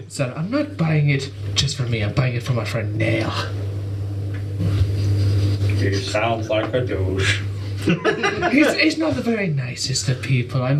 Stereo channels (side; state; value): both; identical; correlation 1.00